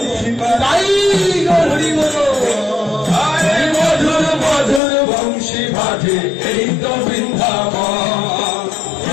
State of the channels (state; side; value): drops out; right; at 4.8 s